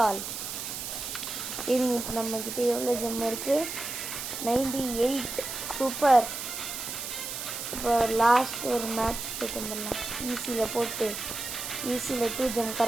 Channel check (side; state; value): right; noise; hiss, 6 dB below the sound